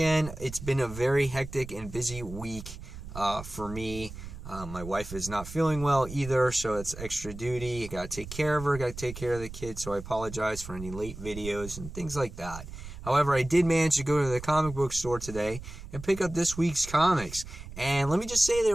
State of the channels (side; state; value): right; noise; rumble, 12 dB below the sound